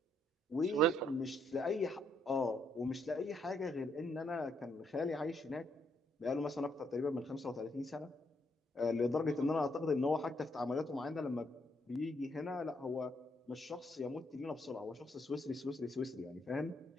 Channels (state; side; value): normal; both; correlation 0.73